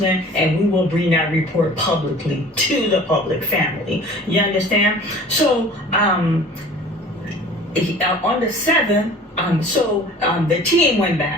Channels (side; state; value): both; normal; correlation 0.46